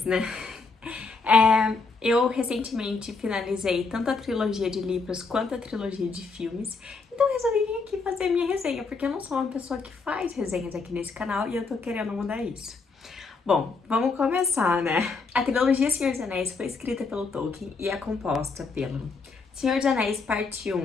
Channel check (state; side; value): quieter; right; 4.3 dB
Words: né? Eu recentemente finalizei tanto a trilogia de livros quanto a trilogia de filmes, então eu resolvi vir aqui fazer a minha resenha, porque eu não sou uma pessoa que faz resenhas aqui nesse canal e eu tô querendo mudar isso. Bom, vamos começar, né? A trilogia Senhor dos Anéis foi escrita pelo Tolkien e é composta pelo Senhor dos Anéis Parte